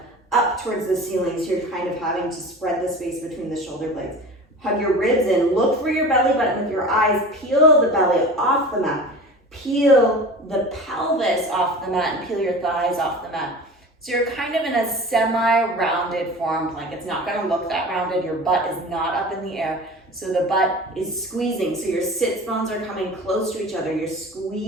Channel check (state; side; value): normal; both; correlation 0.36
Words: up towards the ceiling, so you're kind of having to spread the space between the shoulder blades. Hug your ribs in, look for your belly button with your eyes, peel the belly off the mat. Peel the pelvis off the mat and peel your thighs off the mat. So you're kind of in a semi-rounded forearm plank. It's not gonna look that rounded. Your butt is not up in the air. So the butt is squeezing. So your sits bones are coming close to each other. You're